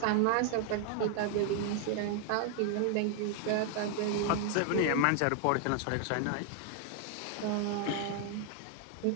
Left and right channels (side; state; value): both; different; correlation 0.00